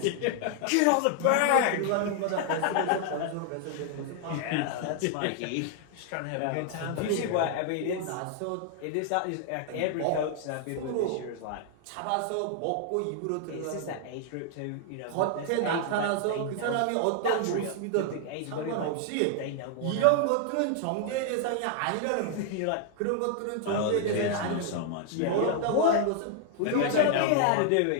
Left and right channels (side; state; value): both; different; correlation 0.00